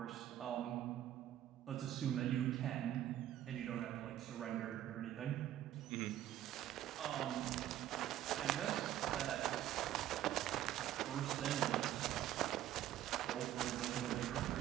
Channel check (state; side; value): quieter; left; 12.4 dB